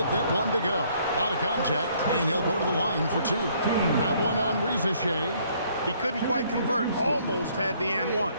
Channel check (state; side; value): inverted; both; correlation -0.64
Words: that one to go. A lot of contact, and he'll go to the line for 2. That one on Risacher. He couldn't quite convert. Almost had the and one.